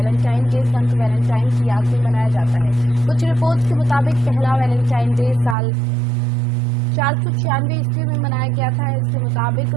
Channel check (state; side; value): drops out; left; at 5.6 s